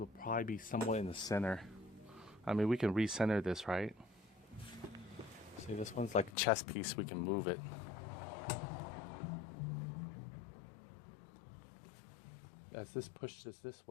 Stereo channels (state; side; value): drops out; right; at 6.4 s